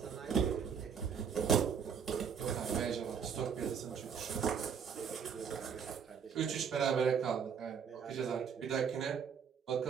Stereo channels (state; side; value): quieter; left; 7.0 dB